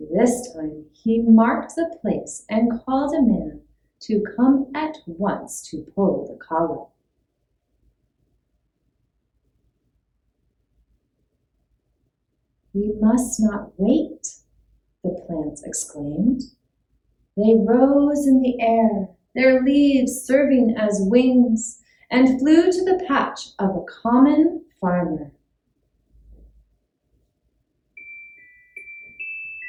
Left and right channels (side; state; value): both; identical; correlation 1.00